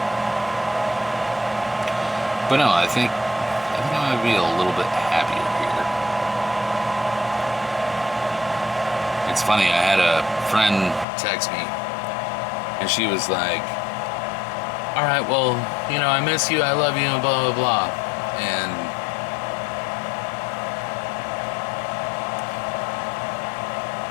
But no, I think I'm gonna be a little bit happier here. It's funny, I had a friend text me, and she was like, "All right, well, I miss you, I love you, and blah, blah, blah." And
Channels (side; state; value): right; drops out; at 11.1 s